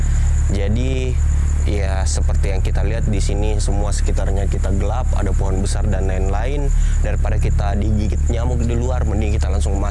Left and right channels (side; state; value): both; identical; correlation 1.00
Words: Jadi ya seperti yang kita lihat di sini semua sekitarnya kita gelap, ada pohon besar dan lain-lain. Daripada kita digigit nyamuk di luar, mending kita langsung